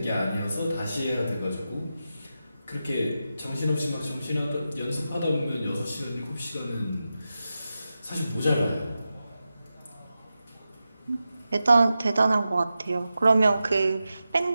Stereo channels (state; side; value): inverted; both; correlation -0.91